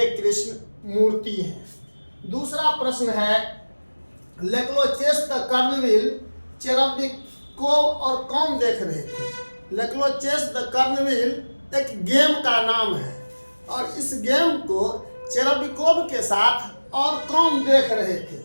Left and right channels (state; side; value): inverted; both; correlation -1.00